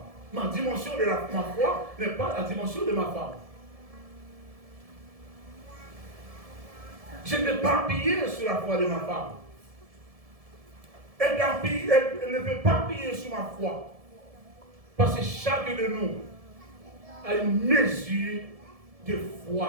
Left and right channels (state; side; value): late; left; 1.7 ms